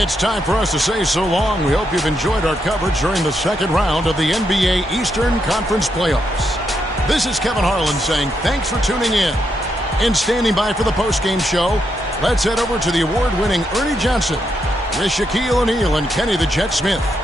time for us to say so long. We hope you've enjoyed our coverage during the second round of the NBA Eastern Conference Playoffs. This is Kevin Harlan saying thanks for tuning in. And standing by for the postgame show, let's head over to the award-winning Ernie Johnson with Shaquille O'Neal and Kenny the Jet Smith.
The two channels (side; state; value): both; normal; correlation 0.80